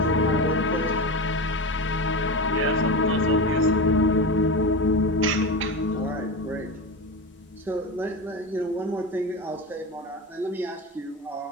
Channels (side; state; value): both; normal; correlation 0.22